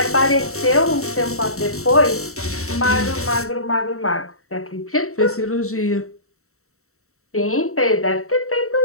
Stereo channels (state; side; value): late; right; 0.64 ms